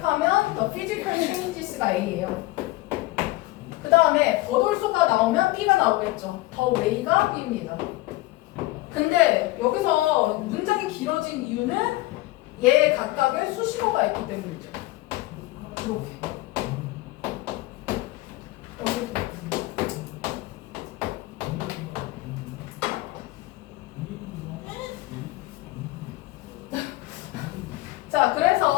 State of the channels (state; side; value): quieter; right; 19.0 dB